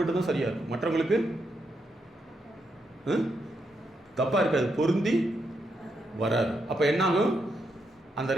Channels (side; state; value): both; normal; correlation 0.81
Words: சரியாக இருக்கும், மற்றவங்களுக்கு தப்பாக இருக்காது, பொருந்தி வராது. அப்போ என்னாகும்? அந்த